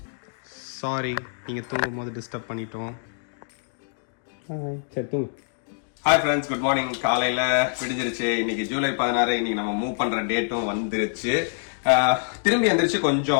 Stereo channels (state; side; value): silent; right; digital silence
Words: சாரி, நீங்க தூங்கும் போது டிஸ்டர்ப் பண்ணிட்டோம். சரி தூங்கு. Hi friends, good morning. காலையில விடிஞ்சிருச்சு. இன்னைக்கு ஜூலை 16. இன்னைக்கு நம்ம மூவ் பண்ற டேட்டும் வந்துருச்சு. திரும்பி எந்திரிச்சு